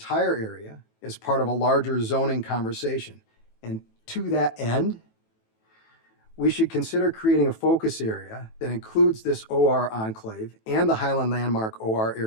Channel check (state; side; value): late; right; 18 ms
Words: area as part of a larger zoning conversation. And to that end, we should consider creating a focus area that includes this OR enclave and the Highland Landmark OR